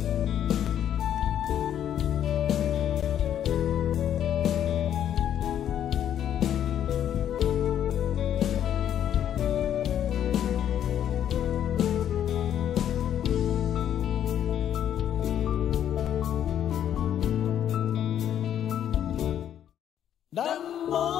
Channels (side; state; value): right; quieter; 10.2 dB